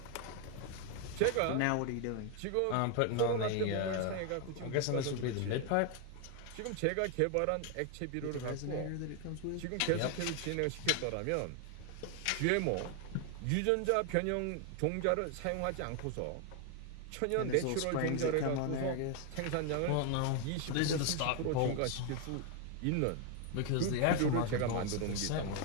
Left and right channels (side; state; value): both; different; correlation 0.01